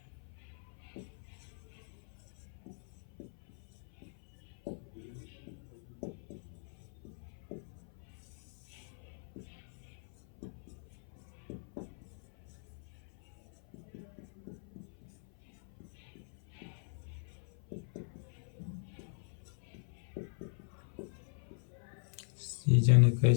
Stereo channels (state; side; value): silent; right; 51 dB below the other